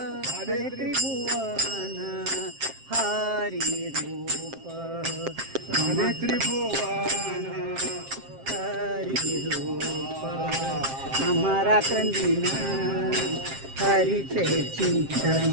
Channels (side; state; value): left; late; 7.5 ms